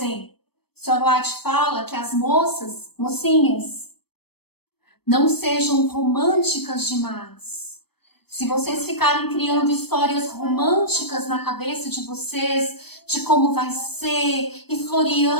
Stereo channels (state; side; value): late; right; 0.97 ms